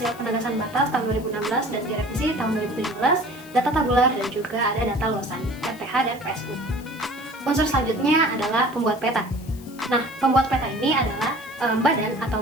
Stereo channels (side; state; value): left; noise; hiss, 21 dB below the sound